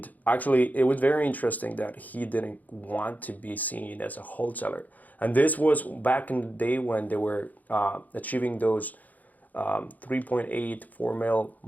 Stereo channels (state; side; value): late; right; 0.080 ms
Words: actually, it was very interesting that he didn't want to be seen as a wholesaler. And this was back in the day when they were achieving those 3.8, 4 mil